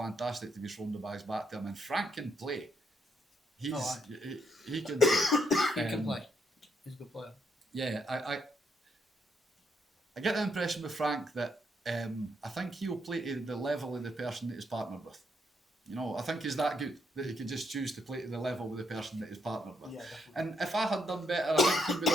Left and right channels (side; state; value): both; normal; correlation 0.76